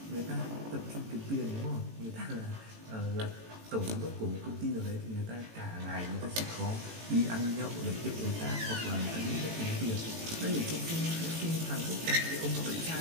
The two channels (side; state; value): left; late; 18 ms